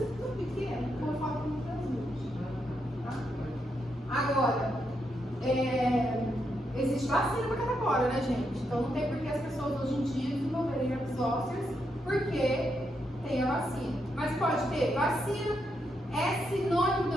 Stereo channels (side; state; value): both; normal; correlation 0.81